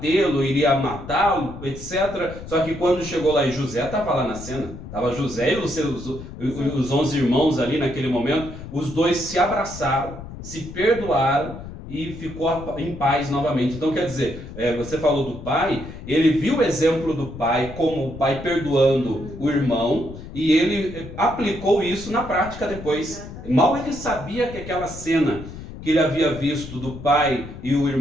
iria matá-lo, etc. Só que quando chegou lá e José estava lá na cena, estava José e os 11 irmãos ali naquele momento, os dois se abraçaram, se perdoaram, e ficou em paz novamente. Então quer dizer, você falou do pai, ele viu o exemplo do pai, como o pai perdoando o irmão, e ele aplicou isso na prática depois. Mal ele sabia que aquela cena que ele havia visto do pai e o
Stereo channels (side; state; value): left; noise; rumble, 12 dB below the sound